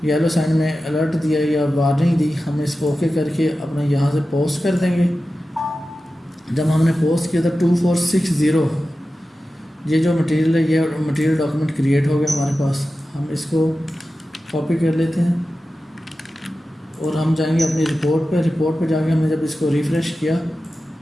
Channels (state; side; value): normal; both; correlation 0.93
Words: येलो साइन में अलर्ट दिया या वार्निंग दी, हम इसको ओके करके अपना यहाँ से पोस्ट कर देंगे। जब हमने पोस्ट किया था 2460 ये जो मटेरियल है, ये मटेरियल डॉक्यूमेंट क्रिएट हो गया हमारे पास। हम इसको कॉपी कर लेते हैं और हम जाएंगे अपनी रिपोर्ट पे जाके हमने जब इसको रिफ़्रेश किया